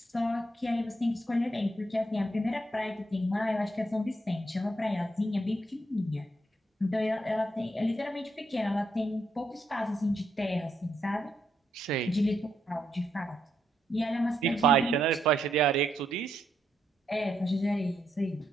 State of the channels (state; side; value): normal; both; correlation 0.78